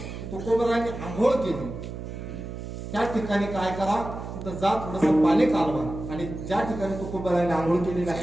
तुकोबारायांनी आंघोळ केली त्या ठिकाणी काय करा, तिथं जा थोडंसं पाणी कालवा आणि ज्या ठिकाणी तुकोबारायांनी आंघोळ केलेली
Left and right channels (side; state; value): right; noise; hum, 8 dB below the sound